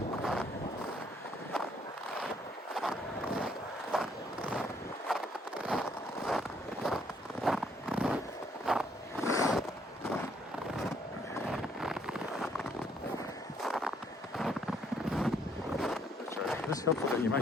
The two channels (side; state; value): both; normal; correlation 0.68